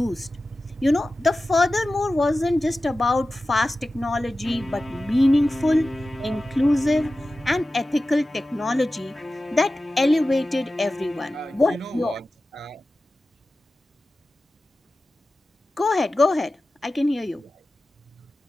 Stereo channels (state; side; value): normal; both; correlation 0.95